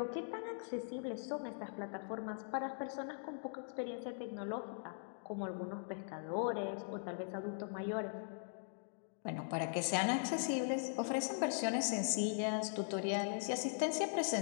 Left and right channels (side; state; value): right; silent; digital silence